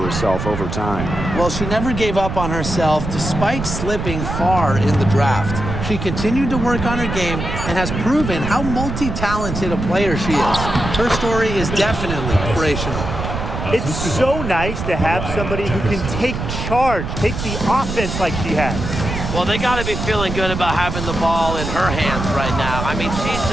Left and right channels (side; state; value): right; noise; rumble, 5 dB below the sound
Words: over time. Well, she never gave up on herself despite slipping far in the draft. She continued to work on her game and has proven how multi-talented a player she is. Her story is definitely inspirational. It's so nice to have somebody who can take charge, take the offense like she has. Well, they got to be feeling good about having the ball in her hands right now. I mean, she's